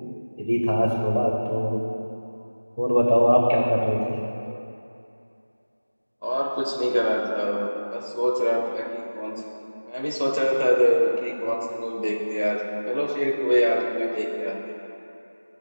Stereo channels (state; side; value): inverted; both; correlation -1.00